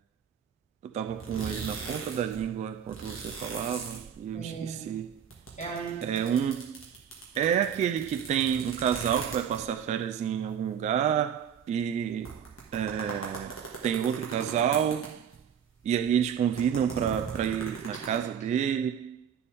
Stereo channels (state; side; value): quieter; left; 8.3 dB